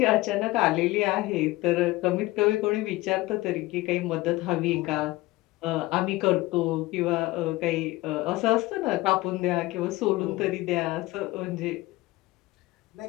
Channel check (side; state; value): right; quieter; 19.4 dB